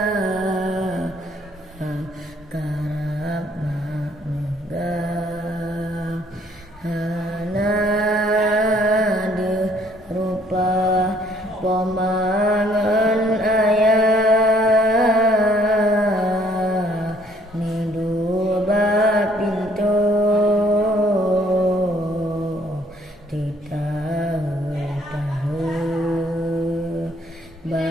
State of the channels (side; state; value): both; normal; correlation 0.63